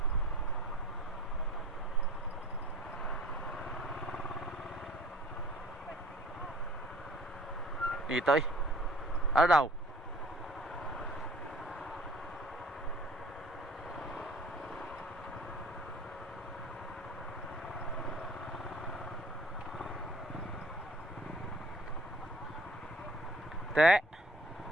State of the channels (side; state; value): both; normal; correlation 0.51